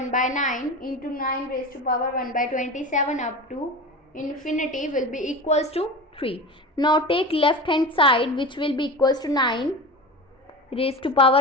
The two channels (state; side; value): normal; both; correlation 0.30